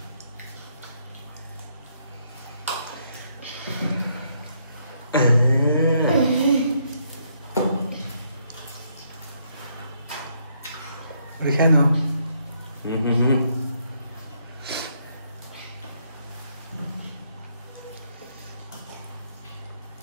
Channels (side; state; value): both; inverted; correlation -0.73